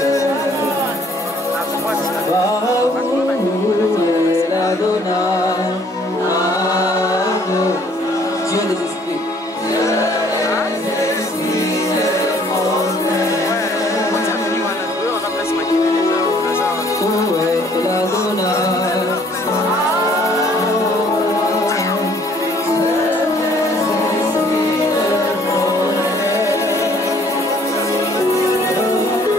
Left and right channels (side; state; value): both; normal; correlation 0.60